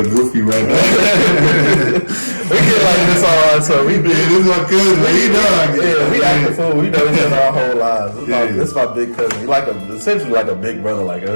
goofy right now. We get like this all right, so we this is my cousin, man. We act the fool. We know each other our whole lives. This is my big cousin. He's like essentially like a big brother. Like it's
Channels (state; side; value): inverted; both; correlation -1.00